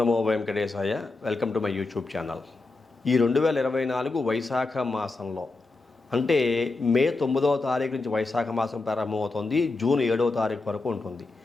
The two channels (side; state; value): right; quieter; 3.4 dB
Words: Venkatesaya. Welcome to my YouTube channel. ఈ 2024 వైశాఖ మాసంలో అంటే మే 9వ తారీఖు నుంచి వైశాఖ మాసం ప్రారంభమవుతుంది. జూన్ 7వ తారీఖు వరకు ఉంటుంది.